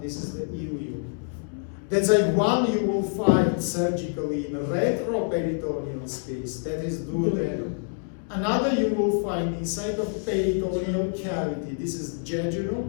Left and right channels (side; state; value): right; silent; 61 dB below the other